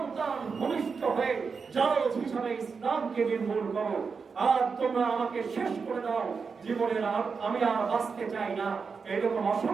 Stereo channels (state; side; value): quieter; left; 5.3 dB